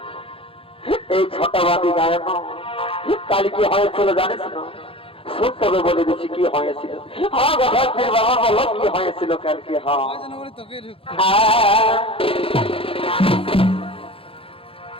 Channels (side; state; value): right; late; 0.27 ms